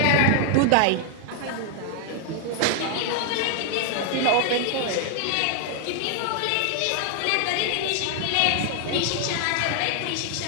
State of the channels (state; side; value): different; both; correlation 0.00